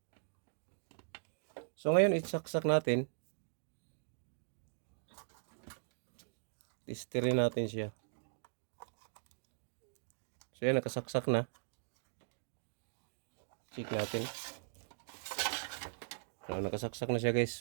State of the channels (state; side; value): silent; left; digital silence